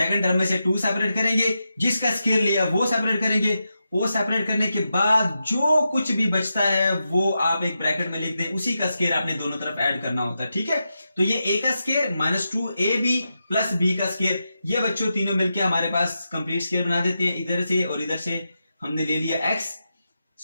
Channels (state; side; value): inverted; both; correlation -0.88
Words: टर्म में से 2 सेपरेट करेंगे, जिसका स्क्वायर लिया वो सेपरेट करेंगे, वो सेपरेट करने के बाद जो कुछ भी बचता है वो आप एक ब्रैकेट में लिख दें, उसी का स्क्वायर आपने दोनों तरफ ऐड करना होता है। ठीक है, तो ये a का square minus 2ab plus b का स्क्वायर, ये बच्चों तीनों मिलकर हमारे पास कंप्लीट स्क्वायर बना देते हैं। इधर से और इधर से हमने ले लिया x,